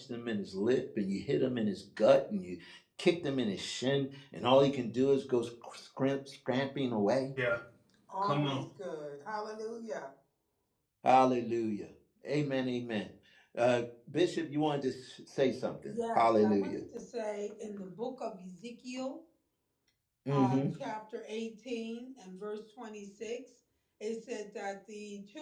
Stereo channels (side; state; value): both; identical; correlation 1.00